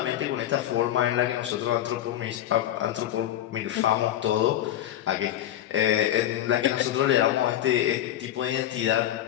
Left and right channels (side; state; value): right; quieter; 12.2 dB